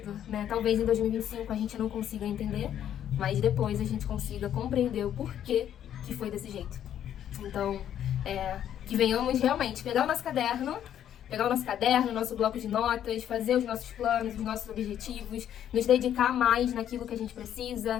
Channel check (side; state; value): right; quieter; 10.3 dB